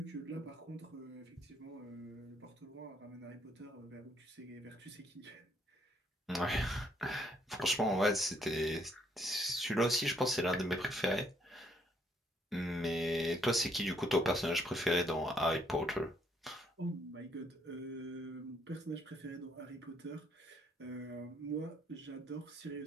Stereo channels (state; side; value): normal; both; correlation 0.69